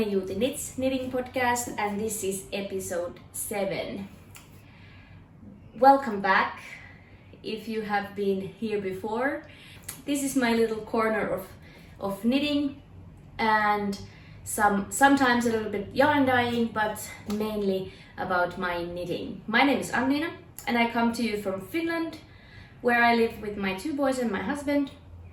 Juuti Knits Knitting Podcast, and this is episode 7. Welcome back if you have been here before. This is my little corner of knitting and sometimes a little bit yarn dyeing, but mainly about my knitting. My name is Anniina and I come to you from Finland, where I live with my 2 boys and my husband.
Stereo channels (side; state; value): both; identical; correlation 1.00